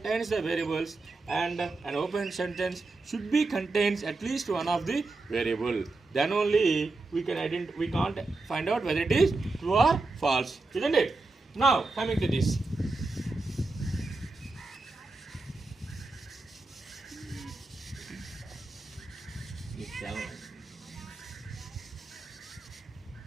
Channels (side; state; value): left; quieter; 3.4 dB